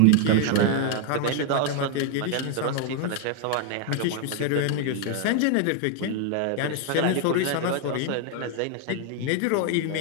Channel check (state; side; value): different; both; correlation 0.00